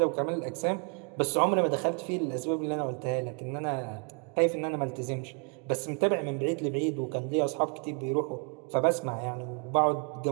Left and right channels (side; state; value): left; quieter; 39.2 dB